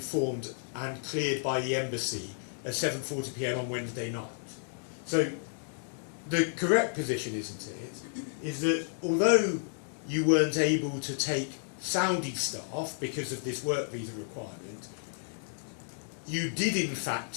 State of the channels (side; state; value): right; silent; digital silence